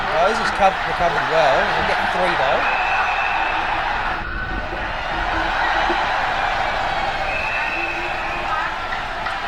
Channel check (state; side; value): identical; both; correlation 1.00